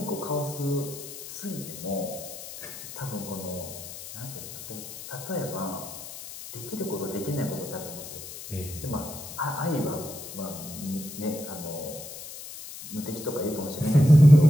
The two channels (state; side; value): noise; left; hiss, 12 dB below the sound